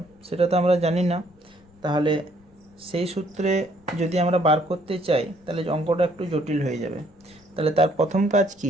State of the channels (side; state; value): left; noise; rumble, 30 dB below the sound